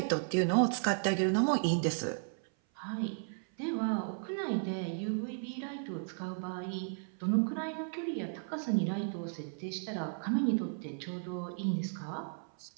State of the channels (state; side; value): silent; left; 55 dB below the other